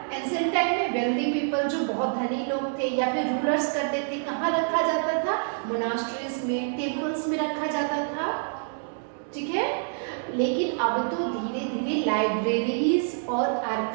एंशिएंट टाइम में वेल्दी पीपल, जो बहुत धनी लोग थे या फिर रूलर्स करते थे। कहाँ रखा जाता था? मोनास्ट्रीज में, टेम्पल्स में रखा जाता था। ठीक है। लेकिन अब तो धीरे धीरे लाइब्रेरीज और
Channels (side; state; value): left; silent; digital silence